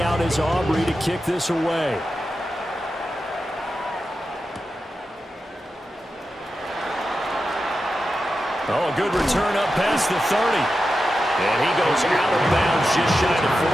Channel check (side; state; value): both; normal; correlation 0.91